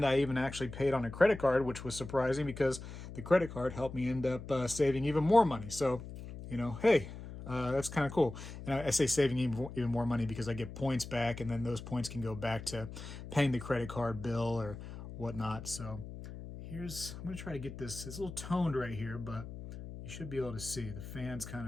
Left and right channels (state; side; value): noise; left; hum, 11 dB below the sound